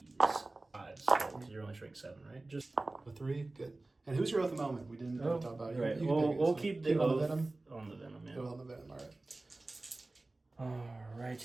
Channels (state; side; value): quieter; left; 3.0 dB